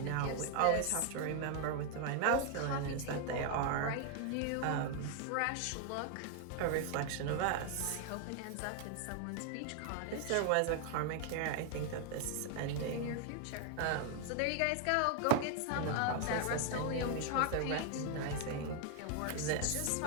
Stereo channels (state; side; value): different; both; correlation 0.00